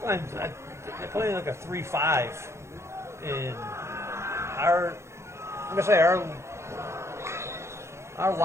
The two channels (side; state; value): left; late; 0.13 ms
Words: they're playing like a 3-5. And I'm going to say our